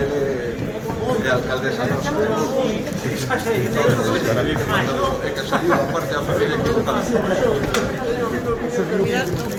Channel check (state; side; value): identical; both; correlation 1.00